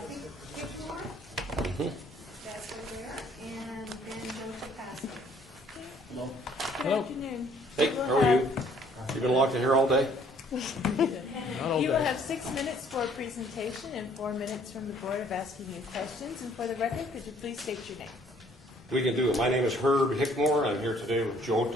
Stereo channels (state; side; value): normal; both; correlation 0.60